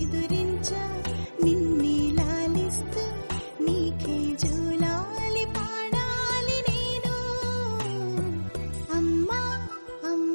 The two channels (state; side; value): inverted; both; correlation -1.00